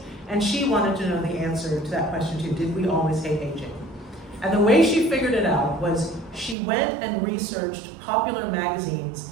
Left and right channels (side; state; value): left; drops out; at 6.6 s